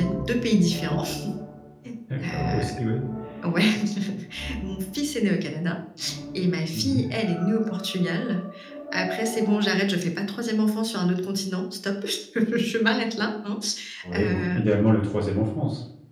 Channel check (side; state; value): both; identical; correlation 1.00